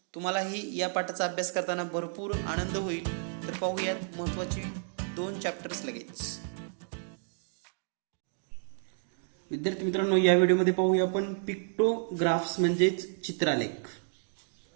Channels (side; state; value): left; silent; digital silence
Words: तुम्हालाही या पाठाचा अभ्यास करताना भरपूर आनंद होईल. तर पाहूयात महत्त्वाची दोन चॅप्टर्स लगेच. विद्यार्थी मित्रांनो, या व्हिडिओमध्ये पाहूया आपण पिक्टोग्राफ्स म्हणजेच चित्रालेख.